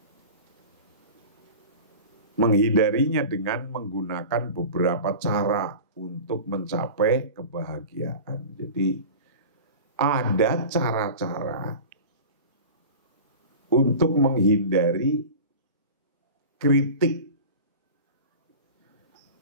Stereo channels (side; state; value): both; inverted; correlation -0.35